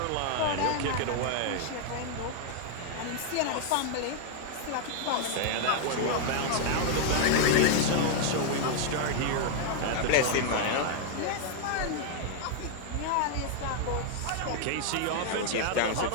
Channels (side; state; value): both; different; correlation 0.00